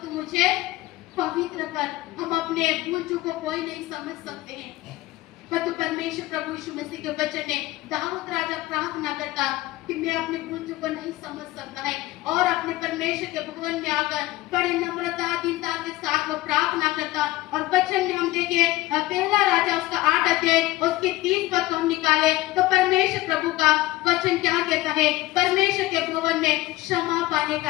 मुझे पवित्र कर। हम अपने भूल चूक को कोई नहीं समझ सकते हैं, परंतु परमेश्वर प्रभु यीशु मसीह के वचन में दाऊद राजा प्रार्थना करता कि मैं अपने भूल चूक को नहीं समझ सकता है, और अपने परमेश्वर के भवन में आकर बड़े नम्रता दीनता के साथ वो प्रार्थना करता। और वचन में हम देखें, पहला राजा उसका 8 अध्याय उसके 30 पद को हम निकाले तो परमेश्वर प्रभु का वचन क्या कहता है? परमेश्वर के भवन में क्षमा पाने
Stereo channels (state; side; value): quieter; right; 17.9 dB